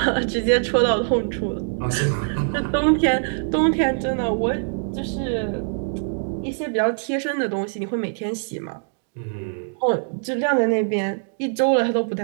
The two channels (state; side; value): silent; left; digital silence